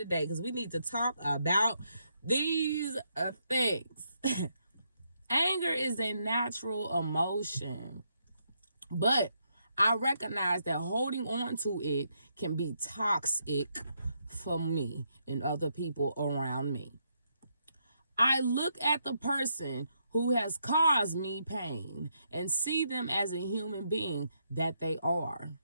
because we need to talk about these things. Anger is a natural emotion, but I recognize that holding on to it can be toxic for me and other people around me. I look at the person who has caused me pain and see them as a human being that they are.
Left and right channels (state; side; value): inverted; both; correlation -0.78